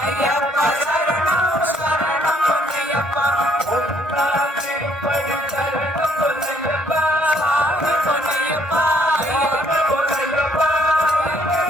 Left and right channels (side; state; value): both; normal; correlation 0.66